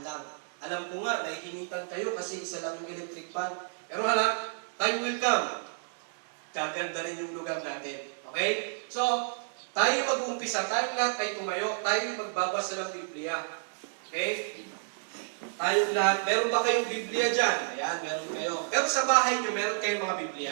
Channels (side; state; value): left; silent; digital silence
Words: lang. Alam ko nga, nahihinitan kayo kasi isa lang yung electric fan. Pero time will come. Gaganda rin yung lugar natin. Okay? So, tayo mag-uumpisa, tayong lahat ay tumayo, tayo magbabasa ng Biblia. Okay? Tayong lahat, meron ba kayong Biblia dyan? Ayan, meron kayo. Pero sa bahay nyo, meron kayong mga